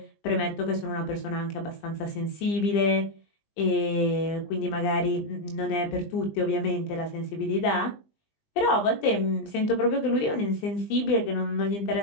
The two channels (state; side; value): late; right; 20 ms